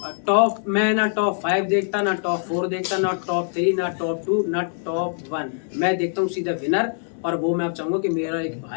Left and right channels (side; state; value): right; silent; 63 dB below the other